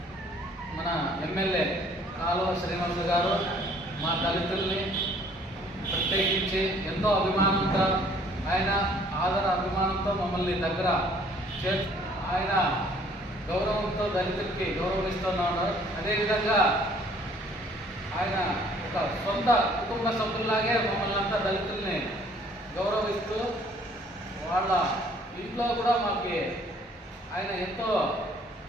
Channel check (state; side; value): normal; both; correlation 0.59